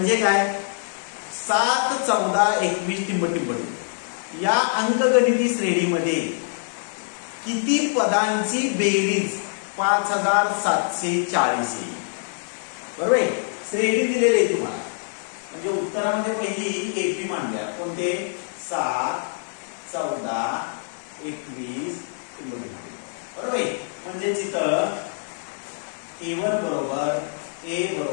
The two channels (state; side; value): silent; right; 59 dB below the other